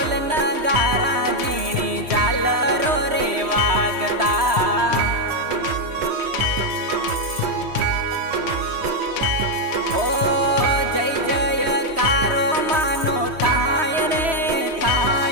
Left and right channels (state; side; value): late; left; 3.1 ms